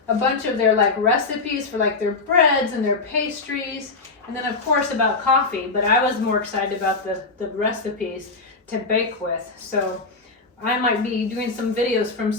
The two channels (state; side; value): quieter; right; 3.8 dB